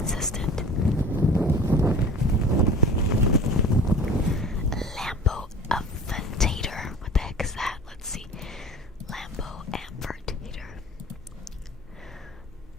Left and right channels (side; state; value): both; normal; correlation 0.41